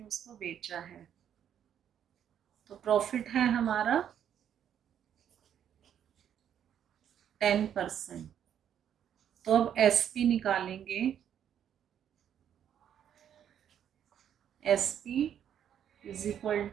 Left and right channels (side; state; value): left; quieter; 9.4 dB